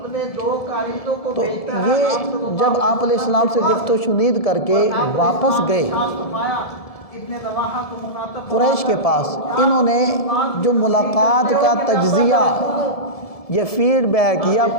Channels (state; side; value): late; right; 1.7 ms